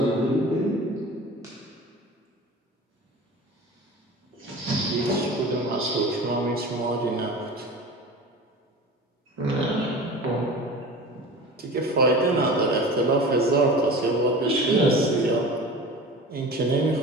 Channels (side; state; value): both; normal; correlation 0.36